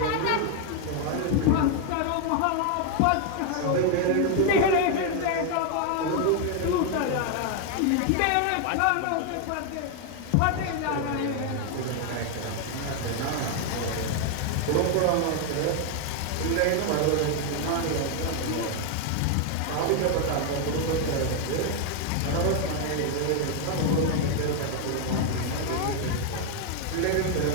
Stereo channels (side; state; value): both; different; correlation 0.00